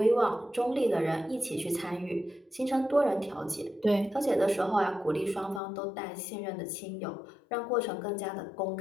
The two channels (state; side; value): drops out; right; at 5.6 s